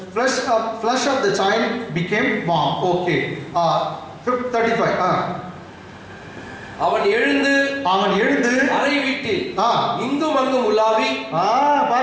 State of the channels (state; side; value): identical; both; correlation 1.00